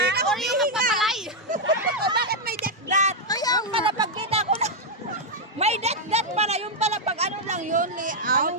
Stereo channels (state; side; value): normal; both; correlation -0.01